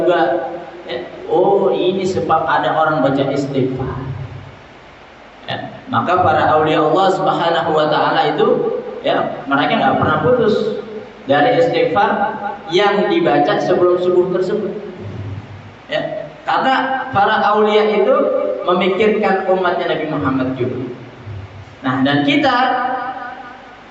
Ya, oh, ini sebab ada orang baca istighfar. Ya, maka para aulia Allah Subhanahu wa taala itu, ya, mereka nggak pernah putus dari istighfar yang dibaca sebelum subuh tersebut. Ya, karena para aulia itu memikirkan umatnya Nabi Muhammad juga. Nah, dan kita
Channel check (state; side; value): identical; both; correlation 1.00